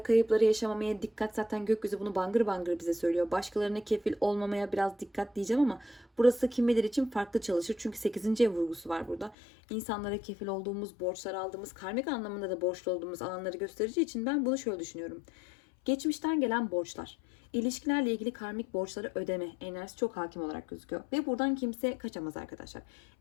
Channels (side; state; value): right; drops out; at 9.3 s